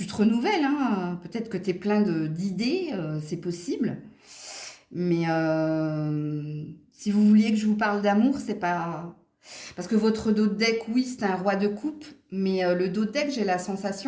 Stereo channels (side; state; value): both; identical; correlation 1.00